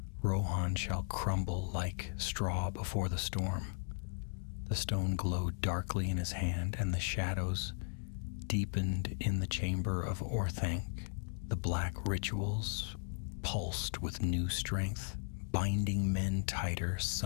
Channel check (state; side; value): silent; right; digital silence